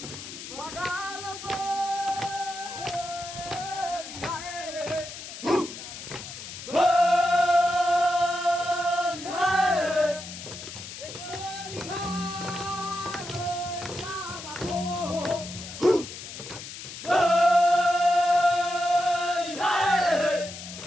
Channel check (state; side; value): noise; left; hiss, 11 dB below the sound